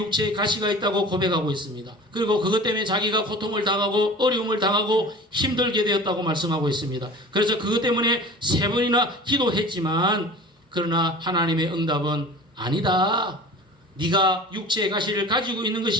가시가 있다고 고백하고 있습니다. 그리고 그것 때문에 자기가 고통을 당하고 어려움을 당하고 힘들게 되었다고 말씀하고 있습니다. 그래서 그것 때문에 3번이나 기도했지만, 그러나 하나님의 응답은 아니다. 네가 육체의 가시를 가지고 있는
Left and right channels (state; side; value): normal; both; correlation 0.39